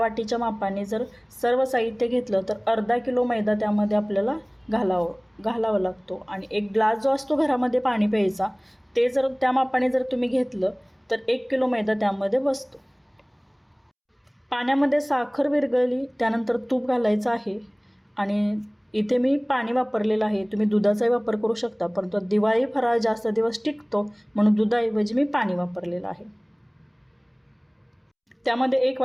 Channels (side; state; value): both; identical; correlation 1.00